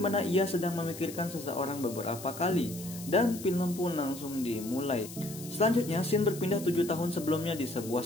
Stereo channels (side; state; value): left; noise; hiss, 13 dB below the sound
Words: ia sedang memikirkan seseorang beberapa kali, dan film pun langsung dimulai. Selanjutnya, scene berpindah 7 tahun sebelumnya di sebuah